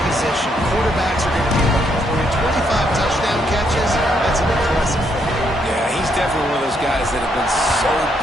position, quarterbacks are going to be looking for you. 25 touchdown catches, that's an impressive thing. Yeah, he's definitely one of those guys that have been so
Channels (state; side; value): normal; both; correlation 0.74